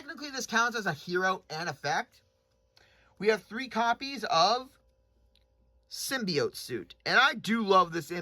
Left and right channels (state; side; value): identical; both; correlation 1.00